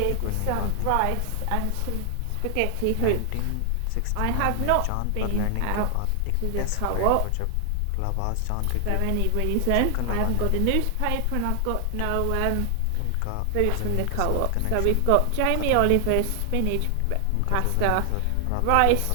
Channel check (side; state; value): both; different; correlation 0.00